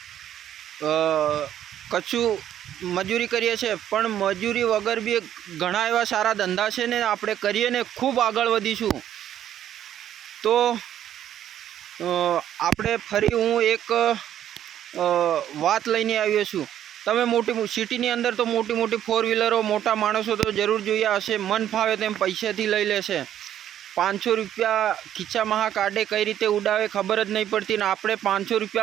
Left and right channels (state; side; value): quieter; left; 10.9 dB